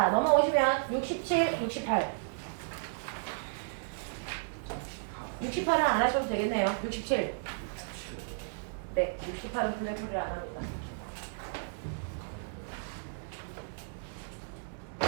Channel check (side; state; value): left; silent; 56 dB below the other